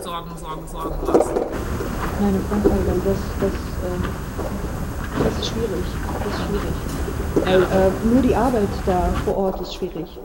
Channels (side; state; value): both; identical; correlation 1.00